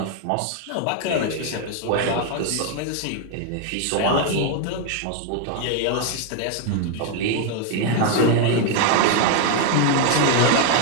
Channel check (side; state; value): both; different; correlation 0.00